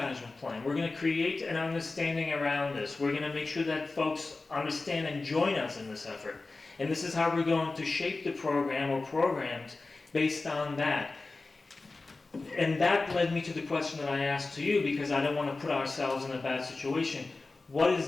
plan. We're going to create an understanding around this. We're going to make sure that folks understand and join us in this effort. And this is how we're going to shape the program or programs based on that. And that led me to the question that I asked to you, because I don't want to put ourselves in a bad situation. What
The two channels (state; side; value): quieter; right; 3.6 dB